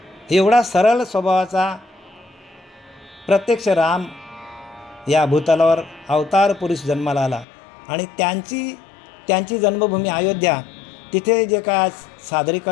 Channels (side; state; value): right; drops out; at 7.5 s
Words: एवढा सरळ स्वभावाचा प्रत्यक्ष राम या भूतलावर अवतार पुरुष जन्माला आला. आणि त्यांची जन्मभूमी अयोध्या, तिथे जे काय